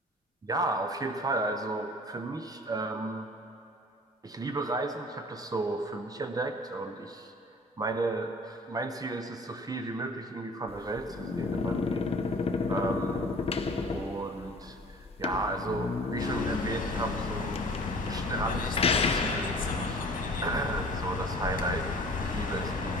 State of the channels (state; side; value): normal; both; correlation 0.47